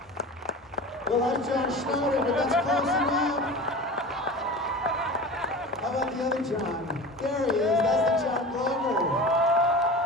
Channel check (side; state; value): both; normal; correlation 0.33